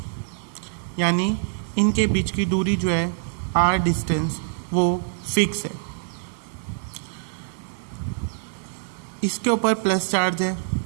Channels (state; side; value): silent; left; digital silence